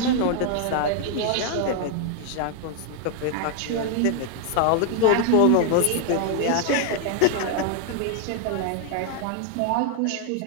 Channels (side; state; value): both; different; correlation 0.00